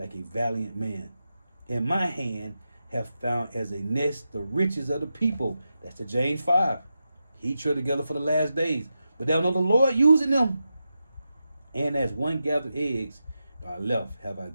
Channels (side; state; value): both; inverted; correlation -0.89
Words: a valiant man. In my hand have found as a nest the riches of the people. That's the James 5. He tread together for the last days, but thou know the Lord using them. And as one gathered eggs, I left have I